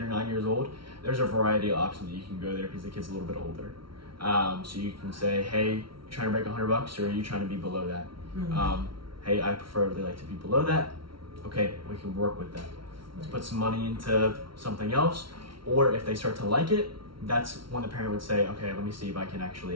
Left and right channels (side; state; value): left; late; 0.74 ms